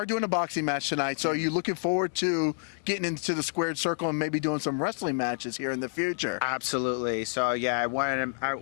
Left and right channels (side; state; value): right; silent; digital silence